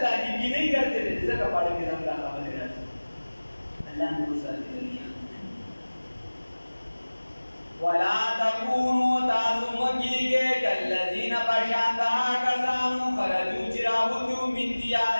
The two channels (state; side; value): inverted; both; correlation -1.00